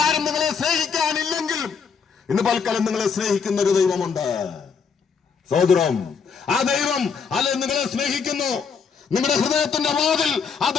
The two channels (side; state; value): right; quieter; 6.1 dB